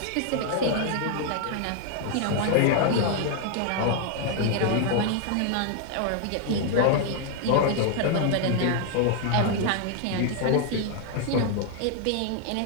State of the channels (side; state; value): both; different; correlation 0.00